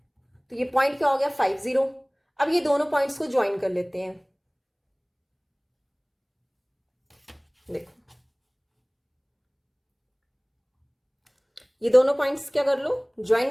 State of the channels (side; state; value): both; identical; correlation 1.00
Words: तो ये पॉइंट क्या हो गया, 5 0। अब ये दोनों पॉइंट्स को ज्वाइन कर लेते हैं। देखो ये दोनों पॉइंट्स क्या कर लो,